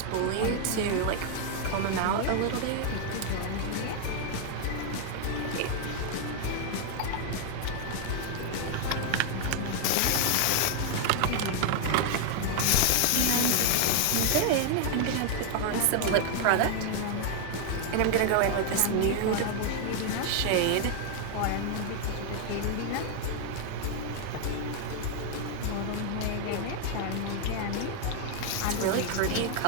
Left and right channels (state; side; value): different; both; correlation 0.00